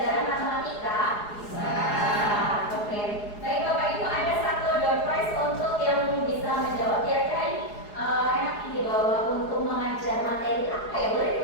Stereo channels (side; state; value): right; late; 4.8 ms